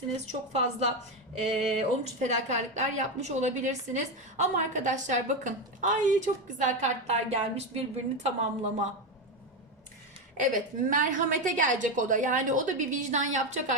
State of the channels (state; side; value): normal; both; correlation 0.13